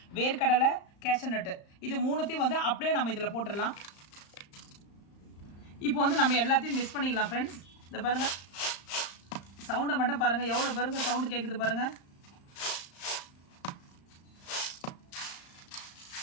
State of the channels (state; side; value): late; right; 35 ms